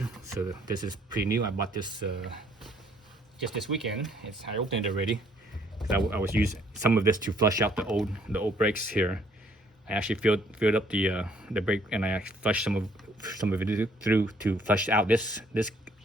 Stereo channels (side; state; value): both; normal; correlation 0.64